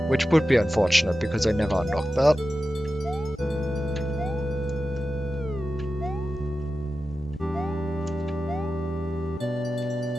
which would be unfortunate because I never unlocked that.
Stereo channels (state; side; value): normal; both; correlation 0.93